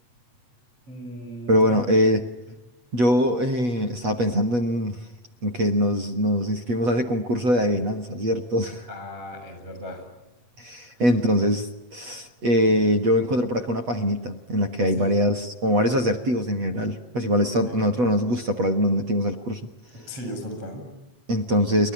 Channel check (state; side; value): late; left; 8.2 ms